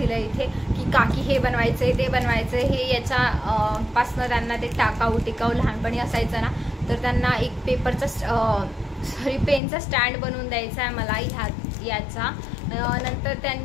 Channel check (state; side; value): drops out; right; at 9.6 s